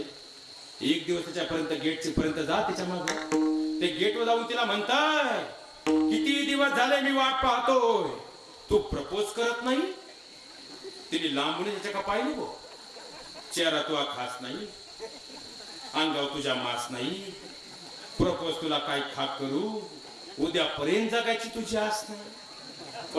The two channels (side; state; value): both; identical; correlation 1.00